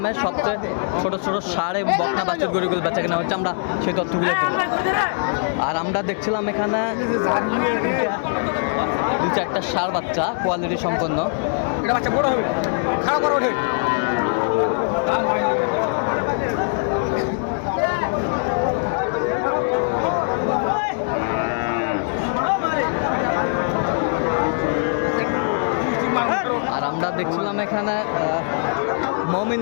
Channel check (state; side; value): silent; right; 64 dB below the other